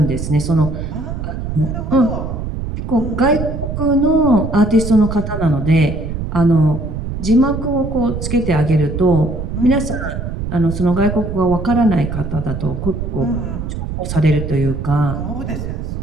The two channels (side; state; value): right; noise; rumble, 5 dB below the sound